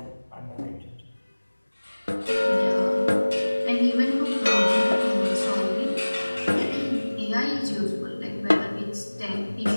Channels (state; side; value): inverted; both; correlation -1.00